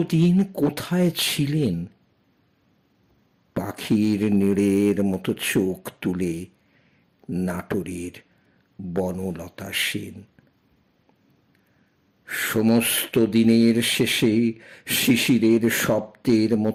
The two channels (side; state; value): both; identical; correlation 1.00